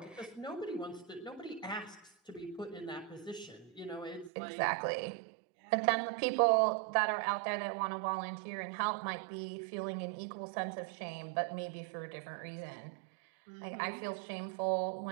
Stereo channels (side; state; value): left; drops out; at 4.3 s